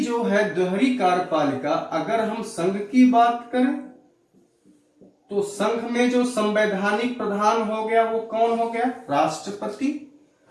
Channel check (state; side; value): identical; both; correlation 1.00